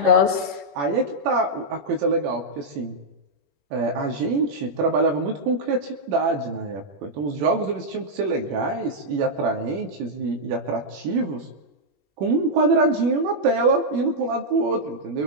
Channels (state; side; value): late; left; 21 ms